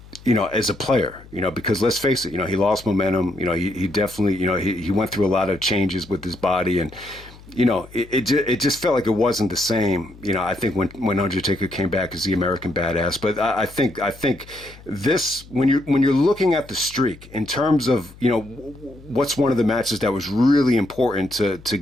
as a player, because let's face it, he lost momentum. He definitely, he went through a lot of changes with his body, and it just felt like it wasn't the same. I think when Undertaker came back as the American Badass. But I think this, when you're looking at the streak in terms of what's one of the matches that was really important to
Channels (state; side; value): noise; left; hum, 21 dB below the sound